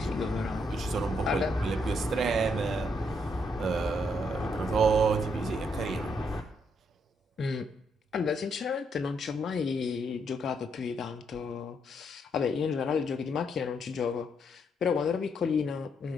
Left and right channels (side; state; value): both; normal; correlation 0.75